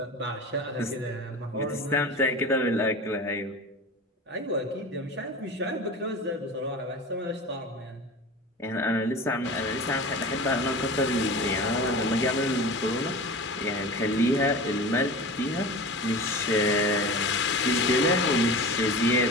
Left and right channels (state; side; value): normal; both; correlation 0.34